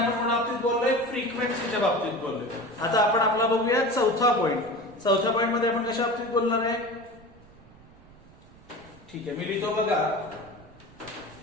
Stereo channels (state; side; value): noise; right; rumble, 23 dB below the sound